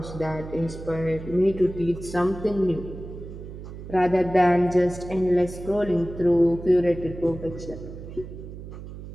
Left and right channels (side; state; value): right; noise; hum, 12 dB below the sound